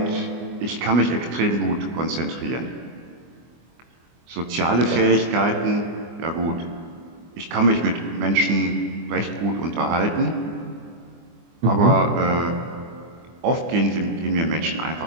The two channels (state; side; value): late; left; 24 ms